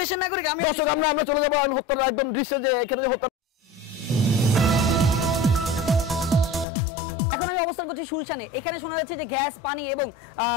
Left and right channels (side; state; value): right; drops out; at 6.7 s